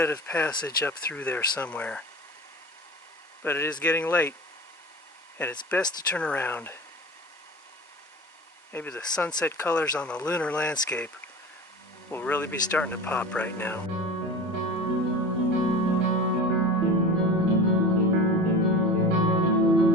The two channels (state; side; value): normal; both; correlation 0.33